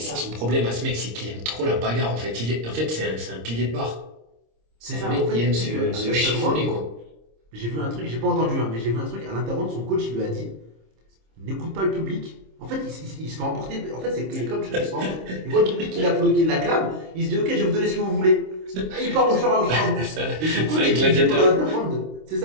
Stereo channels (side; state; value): left; late; 26 ms